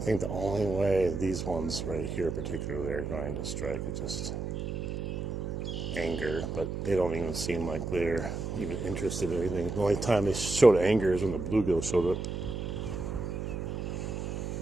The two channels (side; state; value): right; noise; hum, 4 dB below the sound